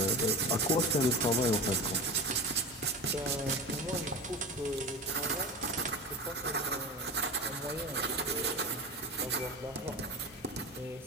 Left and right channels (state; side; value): normal; both; correlation 0.29